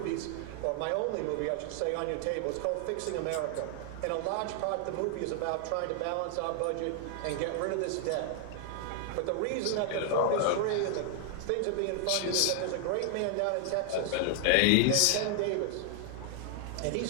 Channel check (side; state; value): both; different; correlation 0.00